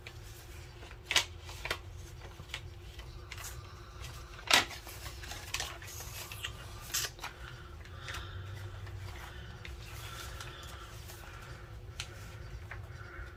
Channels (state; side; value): identical; both; correlation 1.00